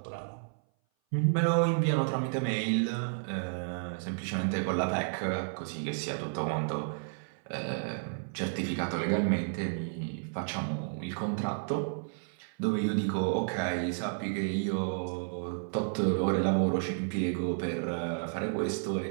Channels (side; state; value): left; silent; 57 dB below the other